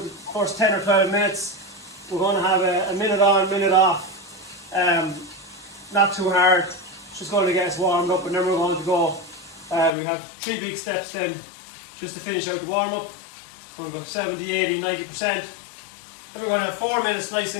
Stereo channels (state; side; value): drops out; right; at 9.9 s